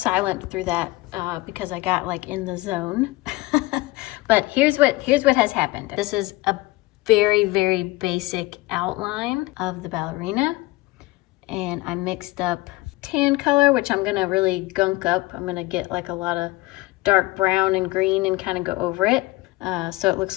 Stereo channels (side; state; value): right; quieter; 21.0 dB